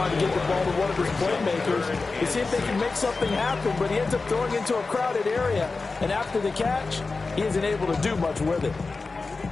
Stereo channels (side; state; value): right; quieter; 3.9 dB